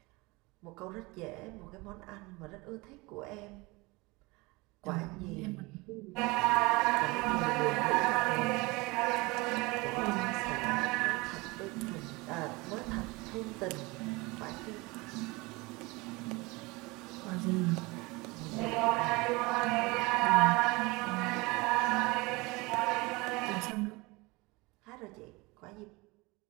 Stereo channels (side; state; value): left; quieter; 24.3 dB